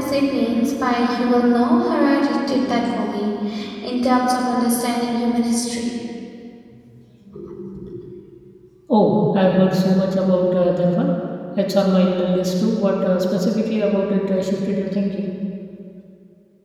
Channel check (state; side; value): identical; both; correlation 1.00